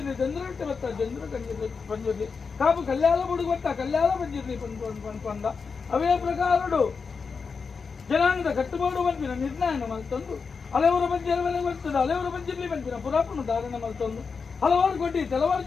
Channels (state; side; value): quieter; right; 5.2 dB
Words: ಚಂದ್ರಗಟ್ಟೆ ಚಂದ್ರ ಬಂದಿರಲಿ ಕಾಪು ಕಲ್ಯಾಣ ಬುಡುಗು ಕಲ್ಯಾಣ ಬಂದಿರಲಿ ಪಂದ ಅವೇ ಪ್ರಕಾರಡು ಜನಾಂಗದ ಕಟ್ಟುಬೋಡು ಬಂದಿನ ನಿರ್ಣಯನ ಮಲ್ತೊಂದು ಹಲವರು ಬಂದಿರವೇ ಬರ್ತದೆ ಹಲವರು ಬಂದಿರಲಿ ಬಂದಿನ ಪುರಾಪುನ ಧಾರಣ ಮಲ್ತೊಂದು ಹಲವಾರು ಕೊಟ್ಟಿ ಕೆಲವಾರು